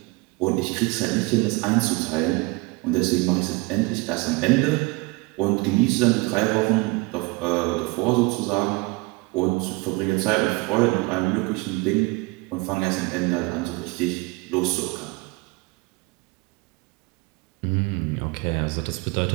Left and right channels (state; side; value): quieter; left; 26.0 dB